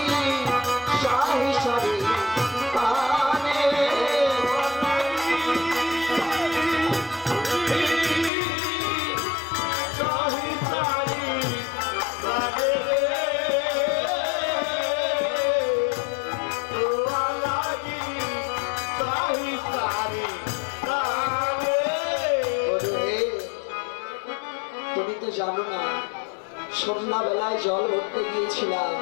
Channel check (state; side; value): drops out; right; at 8.3 s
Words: জানো না, সন্ধ্যাবেলায় জল ভরতে গিয়েছিলাম